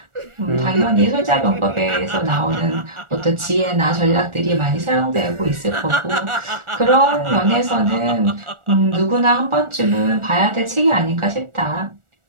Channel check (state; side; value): late; left; 1.4 ms